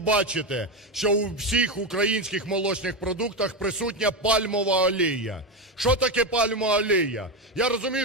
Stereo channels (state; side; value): normal; both; correlation 0.13